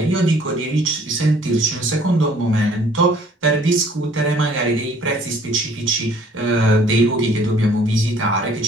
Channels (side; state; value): both; normal; correlation 0.57